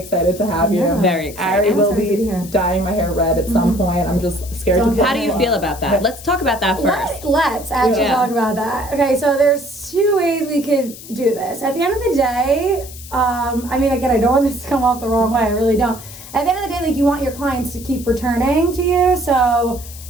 to have you. Very excited. Ari will be dyeing my hair red at some point. I'm just scared to. How do you feel about that? Let's talk about that first. Let's actually talk about that. Okay, so there's two ways we could do this. At the end of the day, I mean, again, I don't want this to come off the wrong way. I really don't. At the end of the day, like, you want your clients to keep returning to you. So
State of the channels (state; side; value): noise; left; hiss, 16 dB below the sound